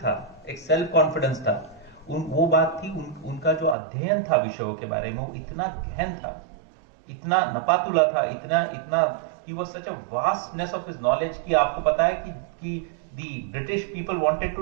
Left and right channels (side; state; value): left; drops out; at 3.8 s